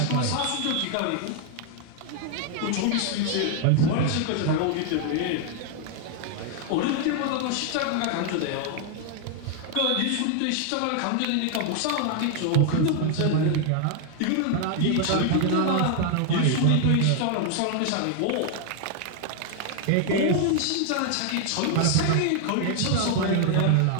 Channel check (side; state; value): both; different; correlation 0.00